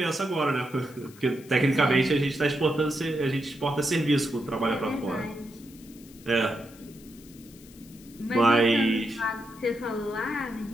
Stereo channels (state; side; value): noise; left; hiss, 23 dB below the sound